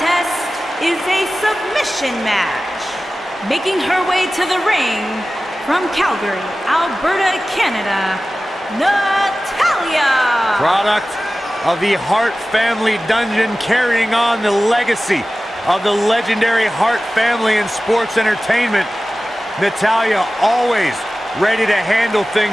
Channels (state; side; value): normal; both; correlation 0.96